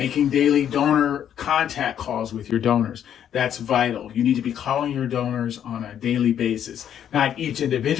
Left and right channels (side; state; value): right; quieter; 9.6 dB